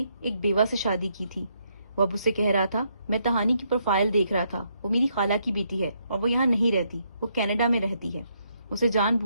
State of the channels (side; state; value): both; inverted; correlation -0.75